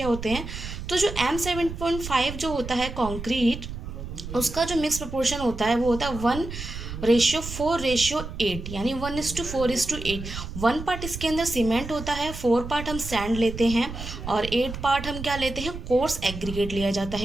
होते हैं। तो जो M7.5 जो होता है कॉन्क्रीट, उसका जो मिक्स प्रोपोर्शन होता है वो होता है 1:4:8, यानी 1:4:8। 1 पार्ट इसके अंदर सीमेंट होता है, 4 पार्ट हम सैंड लेते हैं और 8 पार्ट हम क्या लेते हैं, कोर्स एग्रीगेट लिया जाता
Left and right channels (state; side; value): noise; right; rumble, 9 dB below the sound